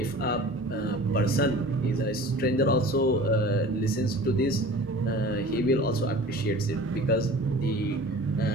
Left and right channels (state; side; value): normal; both; correlation 0.41